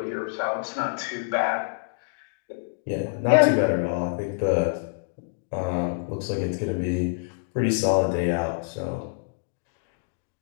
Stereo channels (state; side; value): silent; right; digital silence